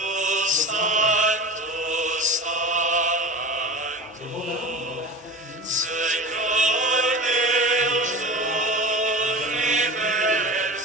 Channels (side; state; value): both; normal; correlation 0.32